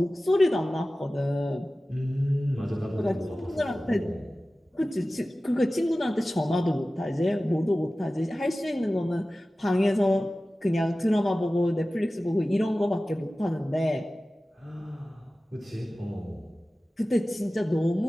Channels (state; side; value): normal; both; correlation 0.96